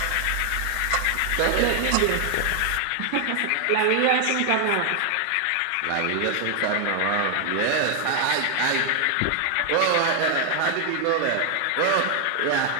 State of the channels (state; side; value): different; both; correlation 0.00